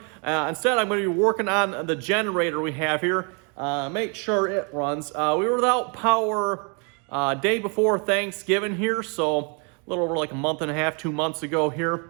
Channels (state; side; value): quieter; left; 35.7 dB